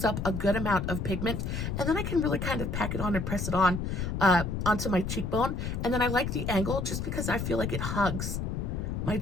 up a good amount of pigment. And then I can really kind of pack it on and press it on onto my cheekbone. And then I like the angle just because I feel like it hugs my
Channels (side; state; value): left; noise; rumble, 2 dB below the sound